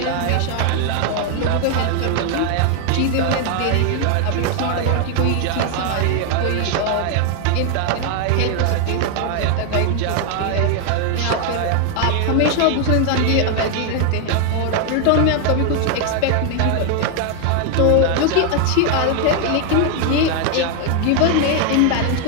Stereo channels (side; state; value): both; different; correlation 0.01